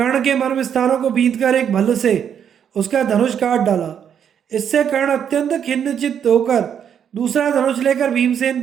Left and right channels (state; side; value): quieter; left; 8.5 dB